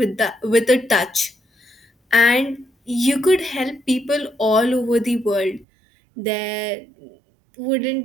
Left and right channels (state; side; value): drops out; left; at 5.7 s